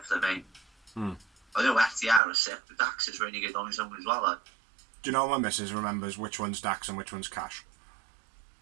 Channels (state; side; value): drops out; left; at 2.2 s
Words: mate. I know FTR is sick, but Dax is really good on his own as well. Like. Do you know my missus remembers which one's Dax and which one's Cash?